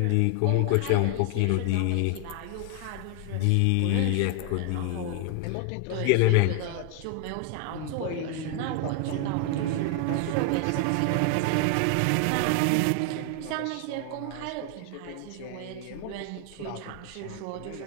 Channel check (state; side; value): different; both; correlation 0.00